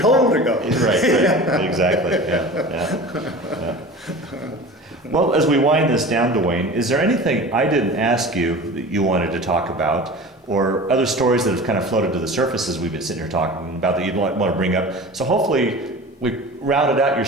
to go. Right. Exactly. Yeah. Well, as we wind this down, Duane, is there anything I didn't ask you that you wanted to talk about, or other stories that have kind of floated to the surface as we've been sitting here talking about that you'd want to bring up? So hopefully we rounded out your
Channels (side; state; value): both; normal; correlation 0.37